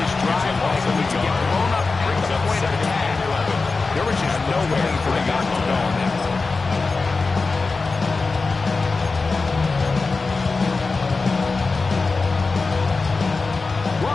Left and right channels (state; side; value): quieter; right; 4.0 dB